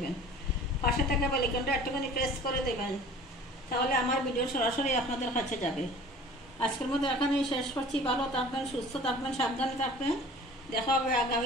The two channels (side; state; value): both; normal; correlation 0.45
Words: পাশে থাকা বেলাইকনটা একটুখানি প্রেস করে দেবেন, তাহলে আমার ভিডিও সরাসরি আপনাদের কাছে যাবে। আজকের মতো এখানেই শেষ করছি। ভালো থাকবেন, সুস্থ থাকবেন, সাবধানে থাকবেন। দেখা হবে